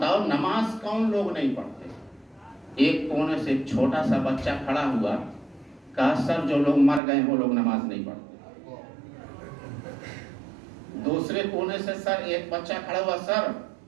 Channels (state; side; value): drops out; left; at 7.0 s